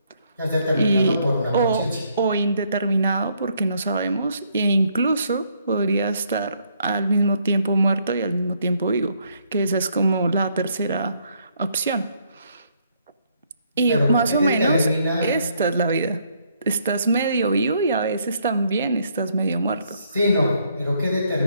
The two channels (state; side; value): inverted; both; correlation -0.70